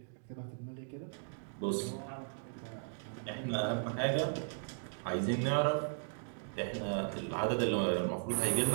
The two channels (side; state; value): left; silent; digital silence